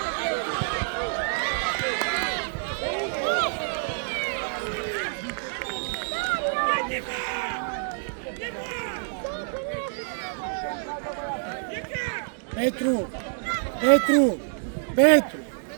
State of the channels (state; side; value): silent; left; digital silence